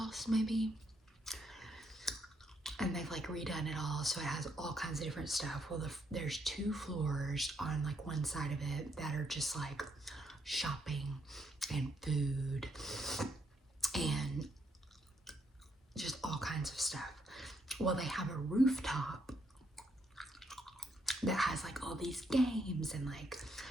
maybe. And they've like redone it all. So it has all kinds of different stuff. Well, there's 2 floors on like one side of it that are just like shopping and food and kinds of stuff. Well, they have a rooftop that has like all these games and like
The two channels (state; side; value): normal; both; correlation 0.75